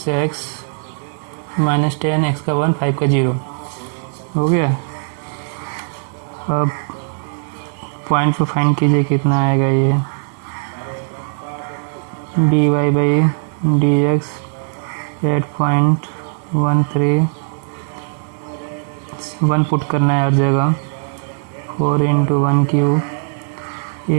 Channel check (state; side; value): silent; left; digital silence